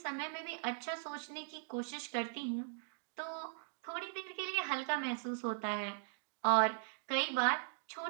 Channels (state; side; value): silent; left; digital silence